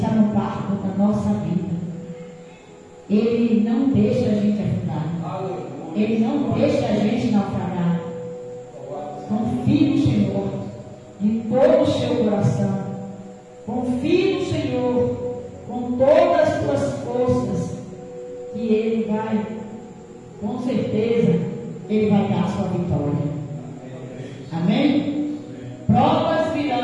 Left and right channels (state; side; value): identical; both; correlation 1.00